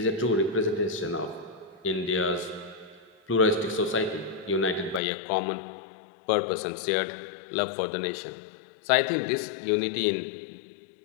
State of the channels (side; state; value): right; drops out; at 5.0 s